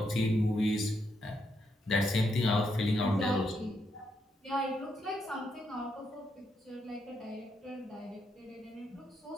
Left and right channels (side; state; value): both; normal; correlation 0.79